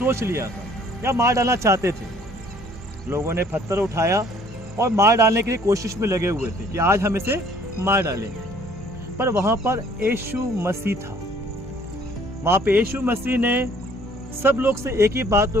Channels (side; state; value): both; normal; correlation 0.58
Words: लिया था या मार डालना चाहते थे। लोगों ने पत्थर उठाया और मार डालने के लिए कोशिश में लगे हुए थे कि आज हम इसे मार डालेंगे। पर वहाँ पर यीशु मसीह था। वहाँ पे यीशु मसीह ने सब लोग से एक ही बात